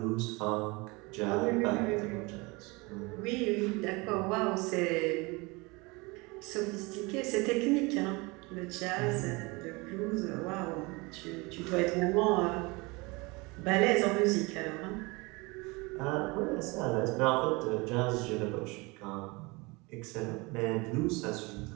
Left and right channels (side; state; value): left; quieter; 25.8 dB